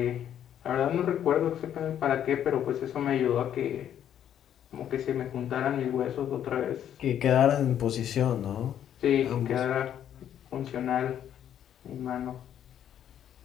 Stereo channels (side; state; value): right; quieter; 10.1 dB